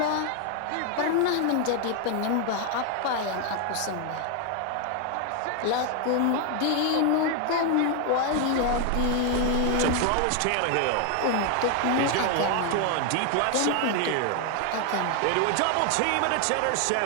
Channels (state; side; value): different; both; correlation 0.01